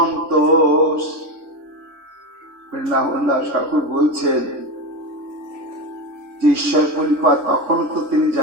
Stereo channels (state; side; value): late; left; 3.4 ms